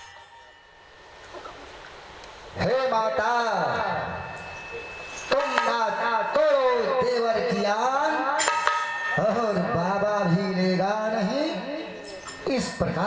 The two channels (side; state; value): both; identical; correlation 1.00